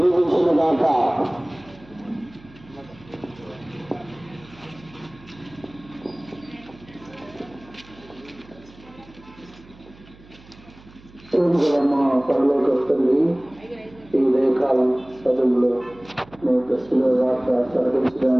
దీవించునుగాక. మా పరలోక తండ్రి, ఈ ఉదయకాలం సభలో మీ దశలో వార్త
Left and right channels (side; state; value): right; noise; hum, 23 dB below the sound